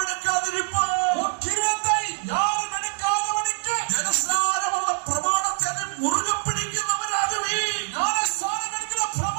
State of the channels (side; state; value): left; silent; 62 dB below the other